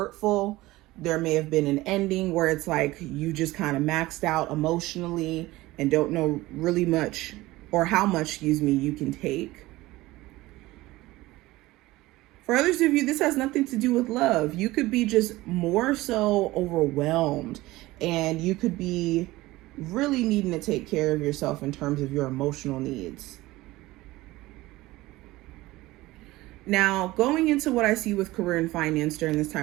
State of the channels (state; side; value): quieter; left; 18.6 dB